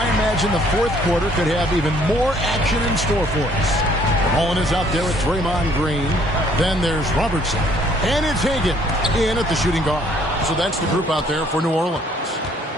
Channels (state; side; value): normal; both; correlation 0.62